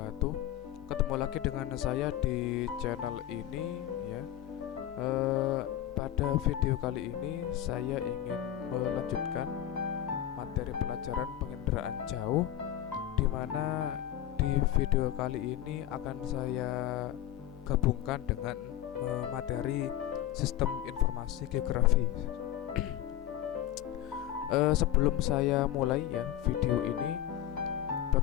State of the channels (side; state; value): right; quieter; 12.1 dB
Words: Ketemu lagi dengan saya di channel ini ya. Pada video kali ini saya ingin melanjutkan materi pelajaran penginderaan jauh, di mana di video kali ini akan saya gabungkan dengan materi sistem informasi geografi. Sebelum saya mulai ya video ini,